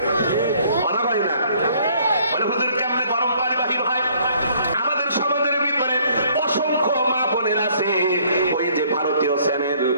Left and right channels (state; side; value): inverted; both; correlation -0.61